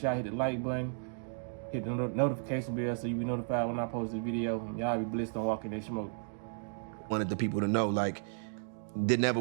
y'all hit the like button, hit the notification bell so you be notified when I post this video. And y'all be blessed on walking that smoke. Wanted the people to know, like, there never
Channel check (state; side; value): silent; left; digital silence